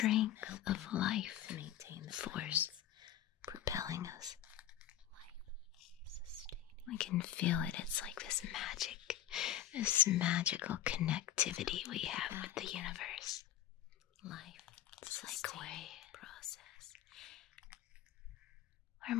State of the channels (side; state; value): right; quieter; 11.4 dB